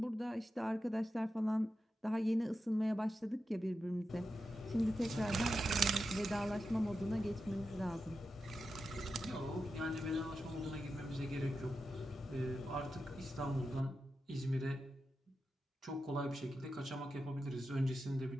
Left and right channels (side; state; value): both; normal; correlation 0.90